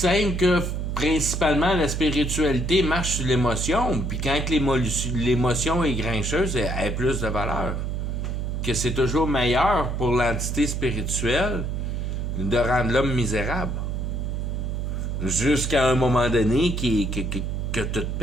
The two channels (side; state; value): right; noise; hum, 2 dB below the sound